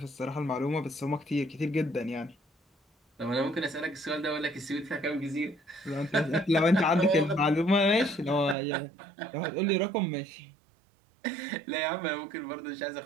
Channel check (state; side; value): drops out; left; at 8.6 s